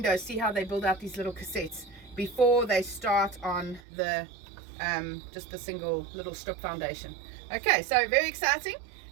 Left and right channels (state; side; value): drops out; left; at 3.8 s